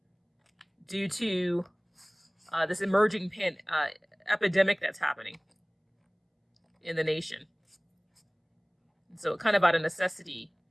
due to this emerging epidemic that's happening in the nation. And so kind of out of necessity,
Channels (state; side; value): identical; both; correlation 1.00